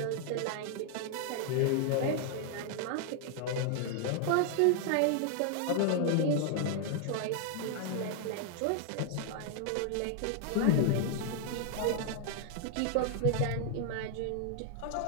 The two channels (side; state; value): both; different; correlation 0.00